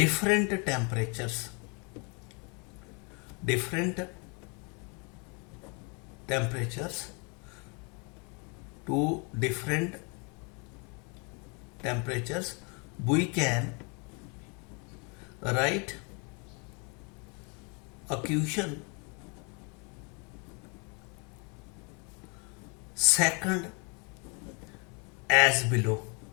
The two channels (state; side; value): quieter; right; 33.8 dB